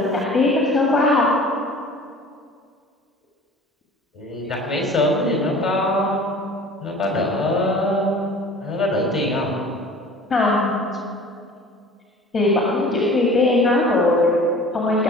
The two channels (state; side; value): normal; both; correlation 0.44